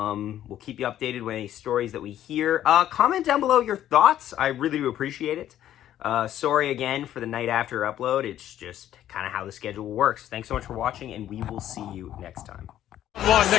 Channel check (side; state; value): right; quieter; 11.8 dB